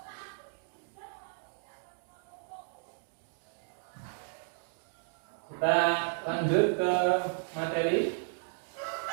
Kita lanjut ke materi.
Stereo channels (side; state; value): left; silent; digital silence